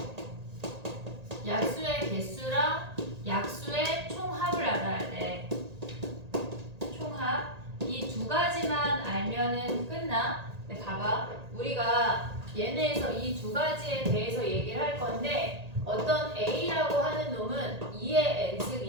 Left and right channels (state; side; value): late; left; 1.8 ms